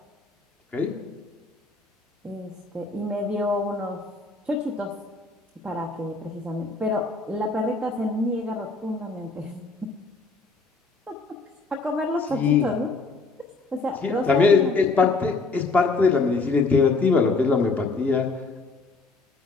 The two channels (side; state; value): right; quieter; 3.8 dB